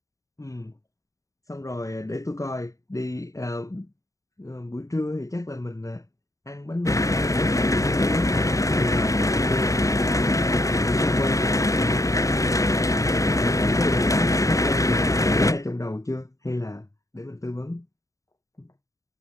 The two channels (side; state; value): right; late; 0.16 ms